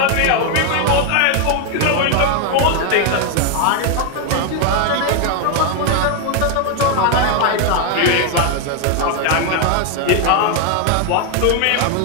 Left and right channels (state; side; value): different; both; correlation 0.01